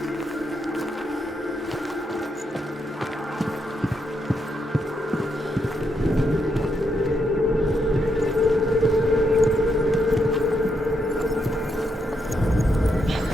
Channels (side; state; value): both; normal; correlation 0.79